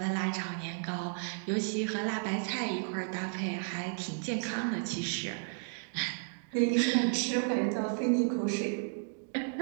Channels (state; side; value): silent; left; digital silence